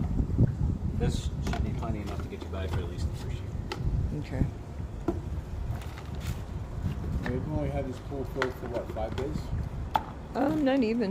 This should be plenty enough to get you by for at least the first year. Okay. They've only had this pool filled for what, 5 days? Not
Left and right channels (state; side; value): identical; both; correlation 1.00